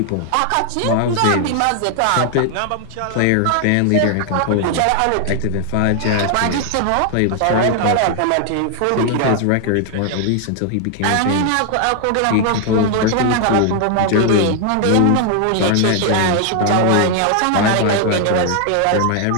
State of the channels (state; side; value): different; both; correlation 0.00